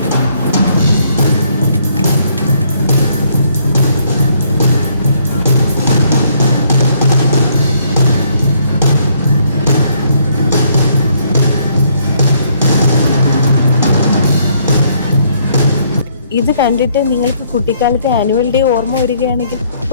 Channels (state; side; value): inverted; both; correlation -0.68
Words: ഇത് കണ്ടിട്ട് നിങ്ങൾക്ക് കുട്ടിക്കാലത്തെ ആനുവൽ ഡേ ഓർമ്മ വരികയാണെങ്കിൽ